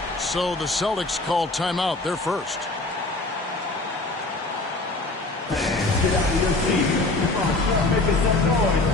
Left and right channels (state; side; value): quieter; right; 3.0 dB